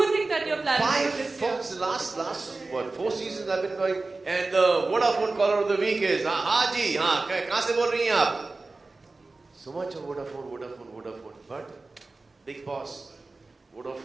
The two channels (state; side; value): quieter; left; 3.5 dB